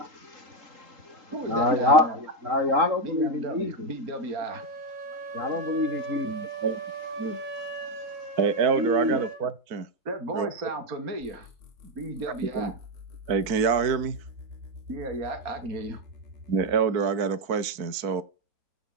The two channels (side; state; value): left; late; 4.5 ms